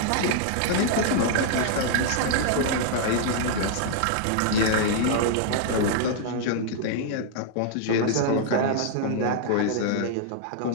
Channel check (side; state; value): both; different; correlation -0.01